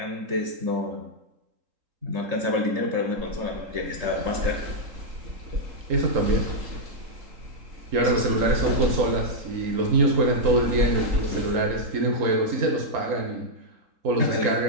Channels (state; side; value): late; left; 3.8 ms